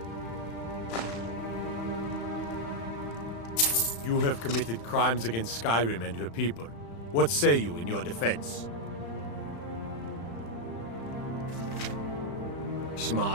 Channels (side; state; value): right; late; 35 ms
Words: You have committed crimes against Skyrim and her people. What say you in your defense?